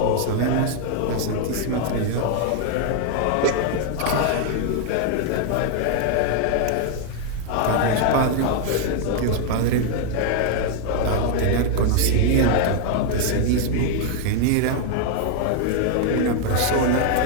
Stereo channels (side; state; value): both; different; correlation 0.00